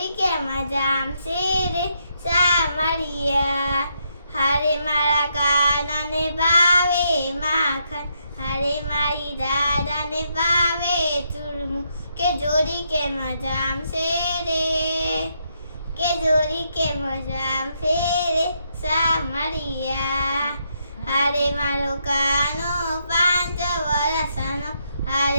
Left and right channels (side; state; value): both; inverted; correlation -0.77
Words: કેમ જામશે રે સામરિયા. હારે મારા કાનાને ભાવે માખણ, હારે મારી દાદાને ભાવે ચૂરમું, કે જોડી કેમ જામશે રે, કે જોડી કેમ જામશે રે સામરિયા. હારે મારો કાનો 5 વર્ષનો,